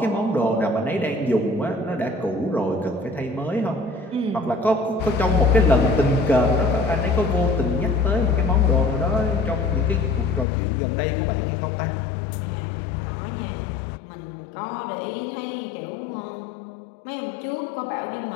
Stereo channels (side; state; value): right; drops out; at 10.5 s